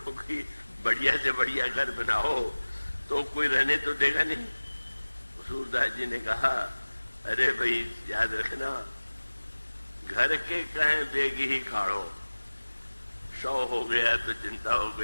बढ़िया से बढ़िया घर बनाओ तो कोई रहने तो देगा नहीं। सूरदास जी ने कहा अरे भाई याद रखना, घर के कहें बेगी ही काढ़ो, 100 हो गया तो चिंता हो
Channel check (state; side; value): inverted; both; correlation -1.00